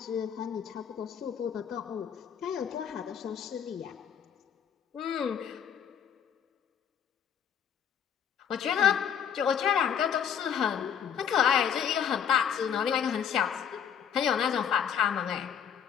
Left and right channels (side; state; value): right; quieter; 8.3 dB